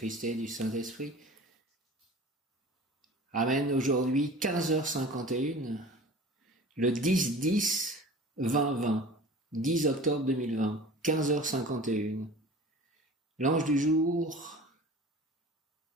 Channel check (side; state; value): both; normal; correlation 0.40